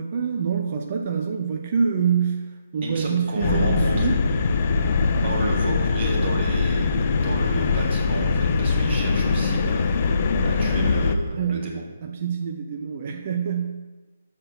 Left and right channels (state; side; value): inverted; both; correlation -0.73